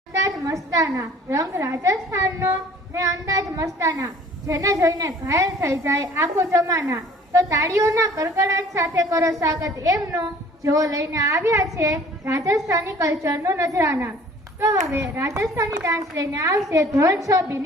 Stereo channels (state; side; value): normal; both; correlation 0.52